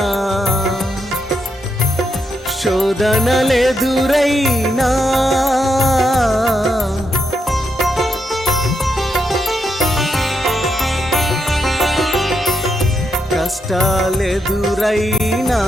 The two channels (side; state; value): both; normal; correlation 0.81